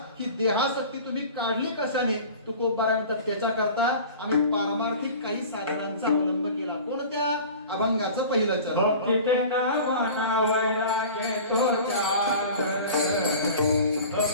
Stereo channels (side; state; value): both; inverted; correlation -0.40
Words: ही देहासक्ती तुम्ही काढली कशाने? तुकोबारायण तर त्याच्या करता आम्ही पारमार्थिक काही साधनांचा अवलंब केला. कोणत्या? अभंगाचं पहिलं चरण. भक्तीते नामना वैराग्य तो त्याग